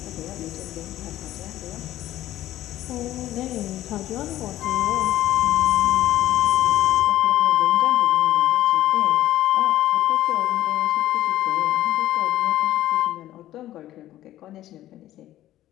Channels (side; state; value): right; quieter; 13.9 dB